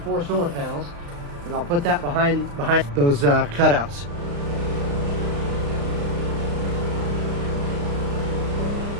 4 solar panels. And I'll put that behind those cutouts.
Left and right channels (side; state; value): left; late; 35 ms